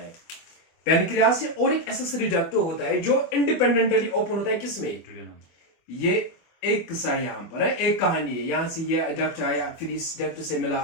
पैनक्रियास से और एक एसेसरी डक्ट होता है जो इंडिपेंडेंटली ओपन होता है किसमें, ये एक किस्सा यहां पर है, एक कहानी है। यहां से ये डक्ट आया, फिर इस डक्ट से मिला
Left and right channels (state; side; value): late; right; 24 ms